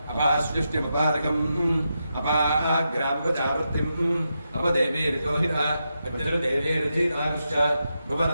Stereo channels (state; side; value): inverted; both; correlation -0.86